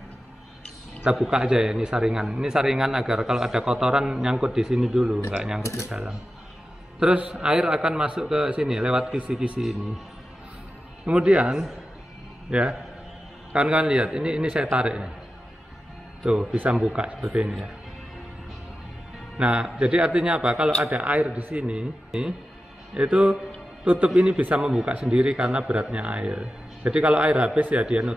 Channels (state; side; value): normal; both; correlation 0.92